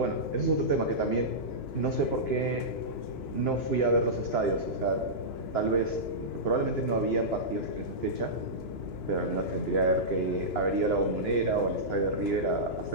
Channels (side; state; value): right; late; 2.9 ms